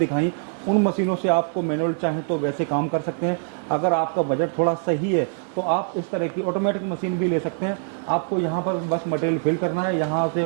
उन मशीनों से आपको मैनुअल चाहें तो वैसे काम कर सकते हैं। अगर आपका बजट थोड़ा सही है तो आप इस तरह की ऑटोमेटिक मशीन भी ले सकते हैं। आपको यहाँ पर बस मटेरियल फिल करना है, यहाँ से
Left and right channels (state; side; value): silent; left; 63 dB below the other